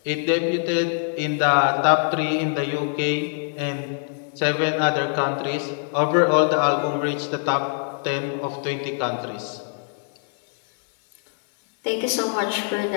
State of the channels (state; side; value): silent; right; 63 dB below the other